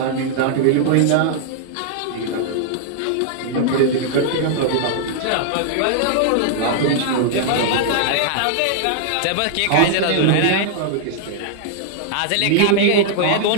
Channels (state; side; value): different; both; correlation -0.01